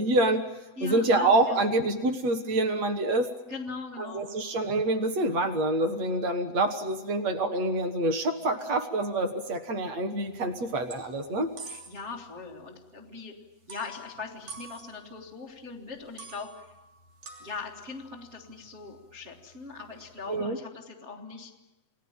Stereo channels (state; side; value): late; left; 8.0 ms